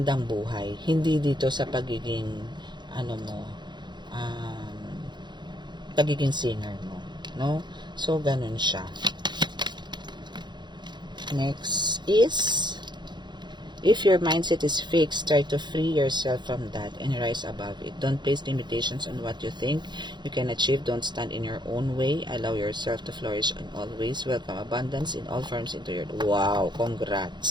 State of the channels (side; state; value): left; late; 0.21 ms